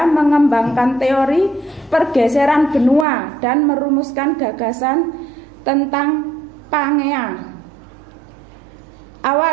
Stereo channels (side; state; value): left; drops out; at 3.1 s